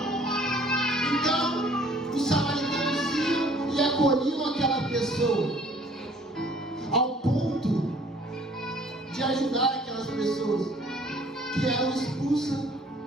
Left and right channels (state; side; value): normal; both; correlation 0.56